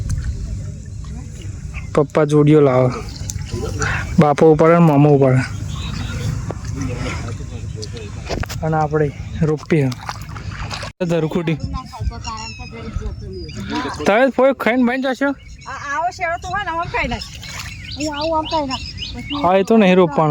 પપ્પા જોડીઓ લાવે બાપો ઉપર અને મામા ઉપર અને આપણે રોપી ધરખુટી તમે ફોઈ ખાઈને બની જશો. હા એ તો નહીં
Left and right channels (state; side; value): identical; both; correlation 1.00